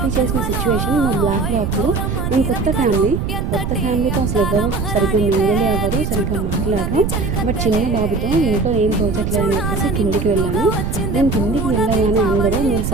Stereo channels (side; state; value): right; noise; rumble, 2 dB below the sound